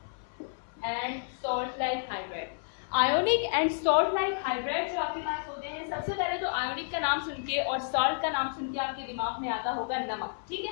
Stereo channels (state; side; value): silent; right; 57 dB below the other